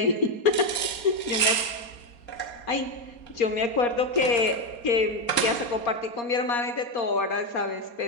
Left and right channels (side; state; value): right; late; 4.2 ms